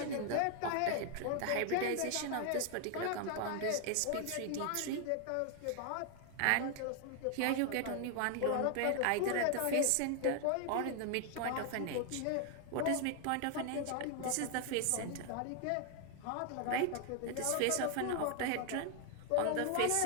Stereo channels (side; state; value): both; different; correlation 0.00